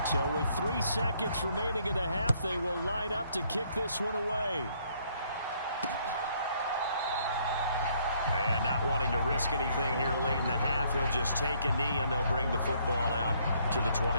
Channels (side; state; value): both; inverted; correlation -0.67